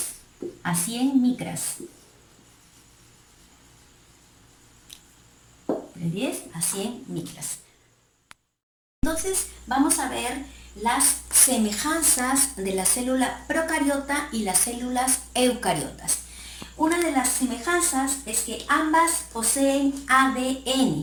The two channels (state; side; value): identical; both; correlation 1.00